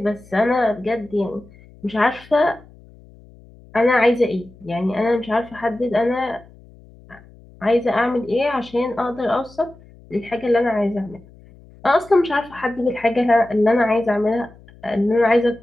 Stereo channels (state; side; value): noise; left; hum, 24 dB below the sound